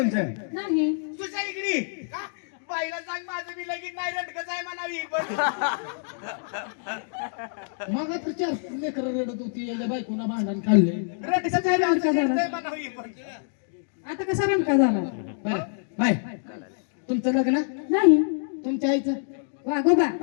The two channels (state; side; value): silent; right; digital silence